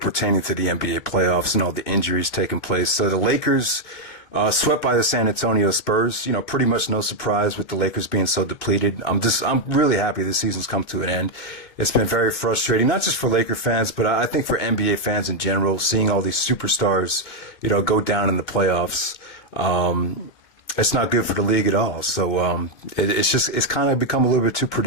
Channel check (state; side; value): late; right; 2.4 ms